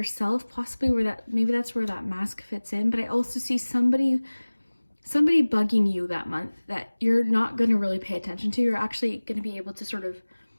possibly maybe that's where that mask fits in. But I also see somebody bugging you that month that you're not going to really pay attention to. You're actually going to be able to sort of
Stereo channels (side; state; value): both; inverted; correlation -1.00